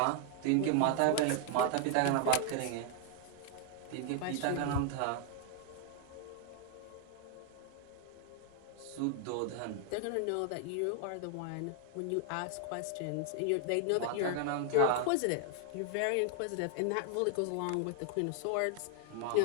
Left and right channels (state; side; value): different; both; correlation 0.00